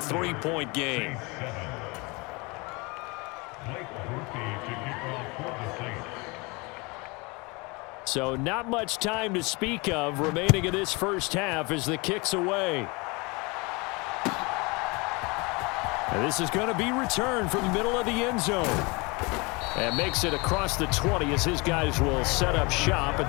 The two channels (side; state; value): right; quieter; 27.3 dB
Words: game. So not much time to speak of remaining in this first half as the kick's away. And this is going to be returned from the middle of the end zone. And makes it across the 20 as his guys will set up shop at